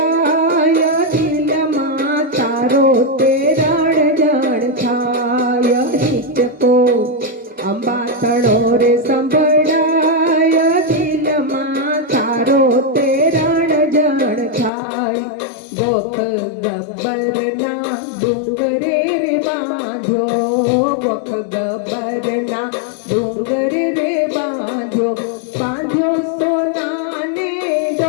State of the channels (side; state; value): right; drops out; at 14.7 s